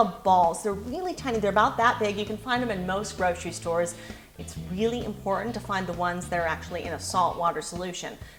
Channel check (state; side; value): identical; both; correlation 1.00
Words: balls. They're really tiny, they're about that big. You can find them in most grocery stores. It's really important to find the ones that are actually in a salt water solution,